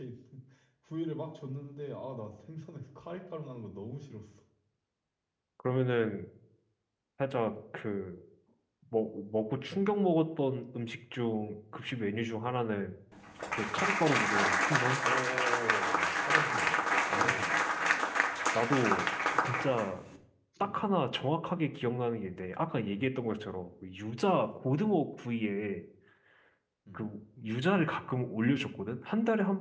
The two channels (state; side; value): identical; both; correlation 1.00